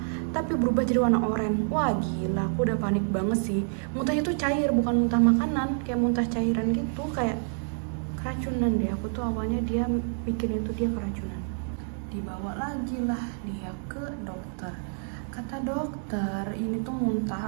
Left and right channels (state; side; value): silent; left; 59 dB below the other